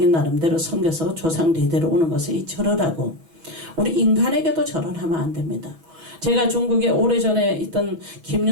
나름대로 섬겨서 조상 대대로 오는 것을 이 절을 하고, 우리 인간에게도 절을 하면 안 됩니다. 제가 중국에 오래전에 있던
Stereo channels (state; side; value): late; left; 6.2 ms